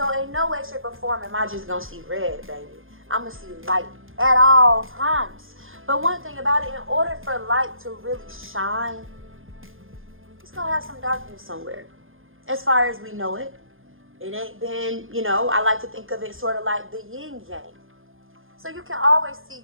in no way, shape, or form am I just gonna see red, baby. I'm gonna see light at all times. But one thing about it, in order for light to really shine it's gonna have some darkness somewhere. As far as we know it, it ain't been, I like to think of it sort of like the yin yang. So you can always see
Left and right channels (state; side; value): late; left; 0.59 ms